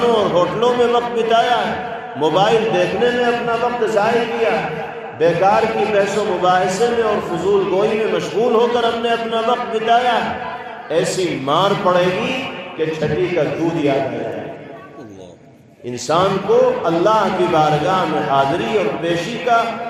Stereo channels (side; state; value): both; identical; correlation 1.00